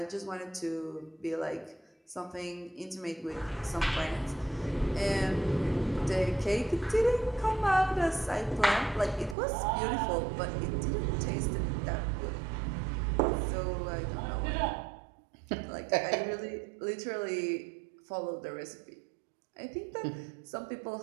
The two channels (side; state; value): left; drops out; at 9.3 s